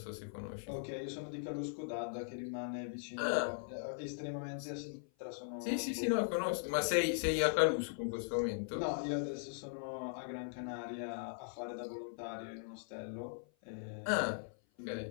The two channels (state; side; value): silent; right; 51 dB below the other